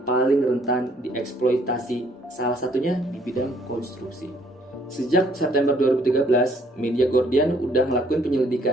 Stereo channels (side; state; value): both; normal; correlation 0.64